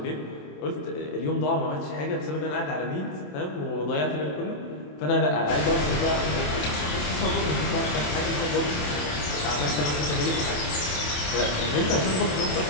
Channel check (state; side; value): late; right; 27 ms